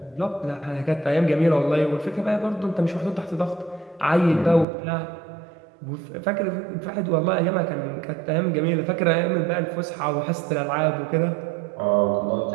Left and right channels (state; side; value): drops out; left; at 4.7 s